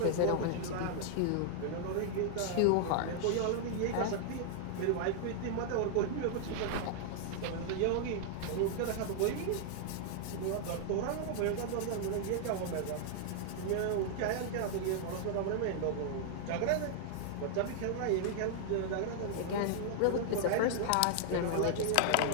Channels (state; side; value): different; both; correlation -0.01